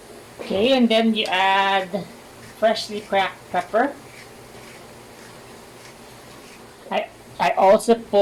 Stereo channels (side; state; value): both; identical; correlation 1.00